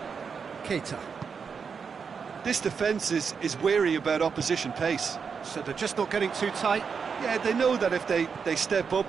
Keita. This defence is wary about opposition pace. So they're just not getting too tight. Yeah, they know that if they step up,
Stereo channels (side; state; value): left; quieter; 6.0 dB